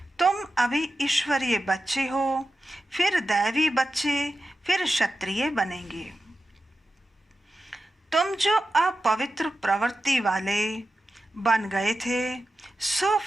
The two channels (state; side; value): normal; both; correlation 0.92